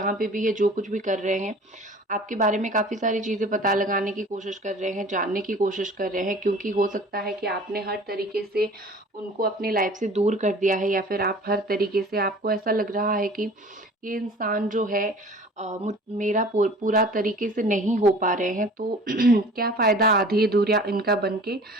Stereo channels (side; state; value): both; normal; correlation 0.45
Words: पे भी है, जो कुछ भी कर रहे हैं, आपके बारे में काफ़ी सारी चीज़ें पता लगाने की कोशिश कर रहे हैं, जानने की कोशिश कर रहे हैं, क्योंकि हो सकता है कि आपने हर तरीके से उनको अपनी लाइफ से दूर कर दिया है, या फिर आप हर तरीके से, आपको ऐसा लग रहा है कि ये इंसान जो है मेरा पूरा तरीके से नहीं हो पा रहे हैं, तो क्या फ़ायदा आधी अधूरा इनका बन के।